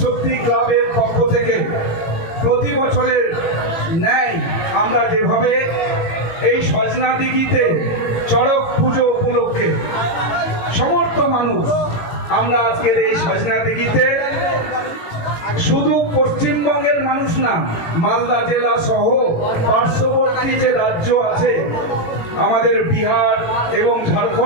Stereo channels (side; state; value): right; late; 18 ms